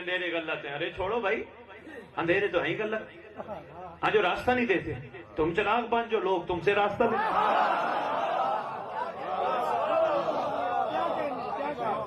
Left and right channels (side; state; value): both; identical; correlation 1.00